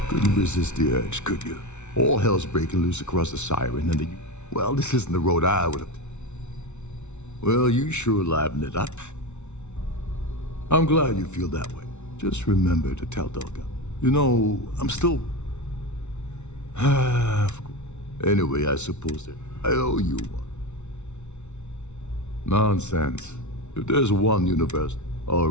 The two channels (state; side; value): late; right; 0.82 ms